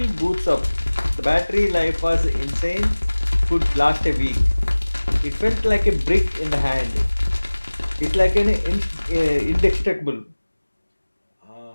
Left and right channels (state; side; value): inverted; both; correlation -1.00